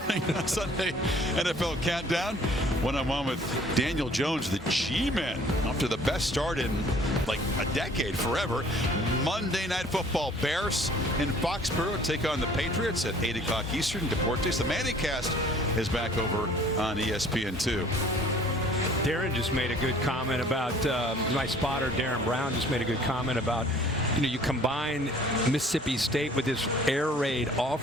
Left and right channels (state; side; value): normal; both; correlation 0.54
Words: on Sunday NFL Countdown. One-on-one with Daniel Jones, the G-Men. After the best start in like a decade, forever. Monday Night Football. Bears in Foxborough take on the Patriots at 8 o'clock Eastern. Deportes. The Manningcast is back over on ESPN2. Darren just made a good comment about, my spotter, Darren Brown, just made a good comment about, you combine Mississippi State with this air raid